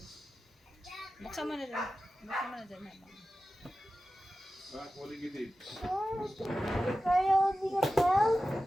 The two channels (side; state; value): both; normal; correlation 0.94